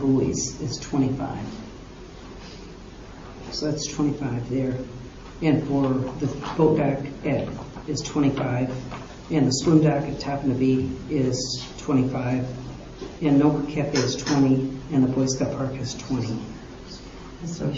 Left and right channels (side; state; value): both; identical; correlation 1.00